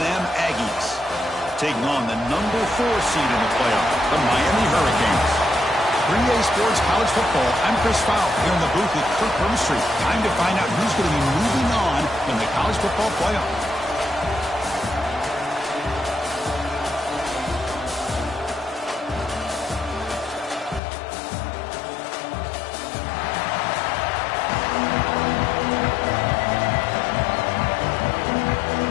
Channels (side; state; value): right; drops out; at 20.8 s